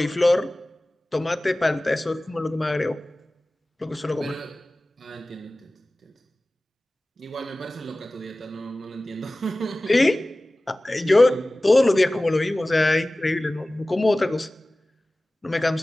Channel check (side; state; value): both; normal; correlation 0.97